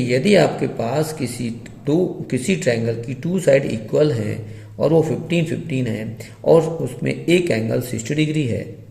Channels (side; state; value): both; identical; correlation 1.00